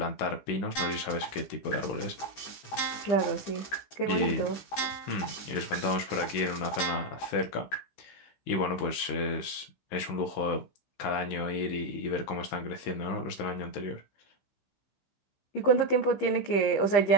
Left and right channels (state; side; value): late; right; 16 ms